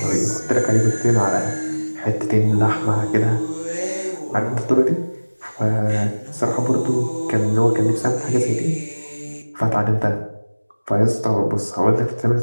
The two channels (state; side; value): inverted; both; correlation -1.00